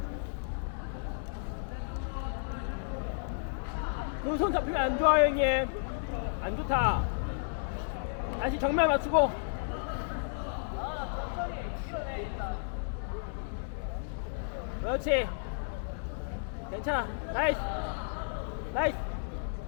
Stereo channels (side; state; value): right; silent; digital silence